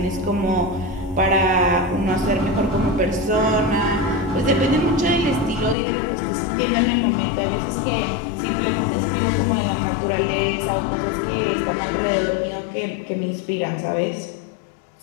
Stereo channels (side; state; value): right; drops out; at 5.8 s